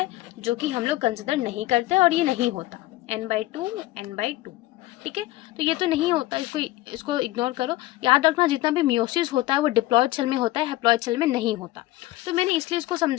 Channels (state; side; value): quieter; right; 17.4 dB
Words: जो कि हम लोग कंसिडर नहीं करते और ये नहीं होता। n/2 ठीक है। तो ये तो नहीं होता, इसको इसको इग्नोर करो। याद रखना, जितना भी मियोसिस होता है वो डिप्लॉयड सेल में होता है, हैप्लॉइड सेल में नहीं होता। तो मैंने इसलिए इसको